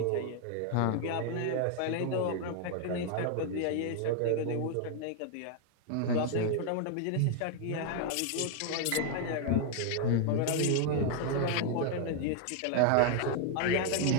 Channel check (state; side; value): different; both; correlation 0.00